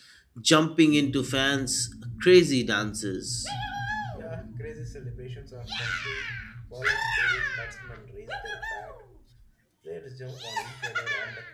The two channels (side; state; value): both; identical; correlation 1.00